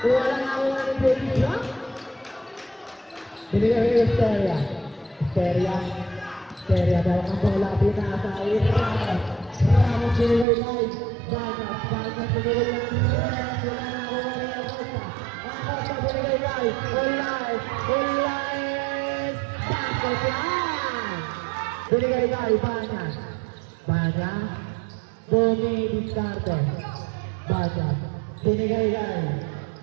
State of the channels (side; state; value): left; drops out; at 10.5 s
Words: wala na ako ng ibigya. Binigay yung Esteria, Esteria dahil ang bola, pinasa ay Ramos, Ramos binigay live, Bagas binigay yung Ramos, wala na ako ng ibigya. Acosta binigay live, wala ay binigay kay Banya, dumidiskarte, Banya, binigay kay